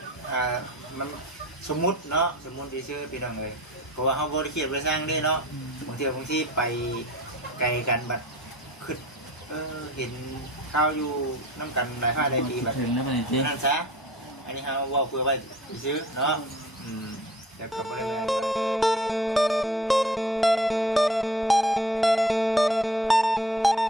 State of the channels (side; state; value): both; normal; correlation 0.45